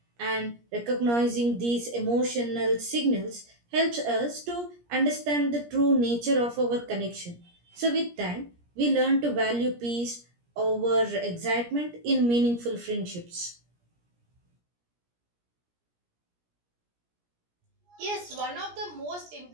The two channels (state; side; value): late; left; 17 ms